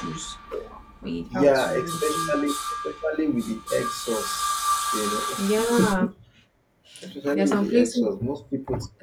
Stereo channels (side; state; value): both; identical; correlation 1.00